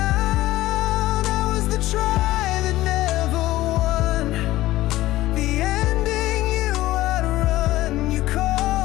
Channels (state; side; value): quieter; right; 16.5 dB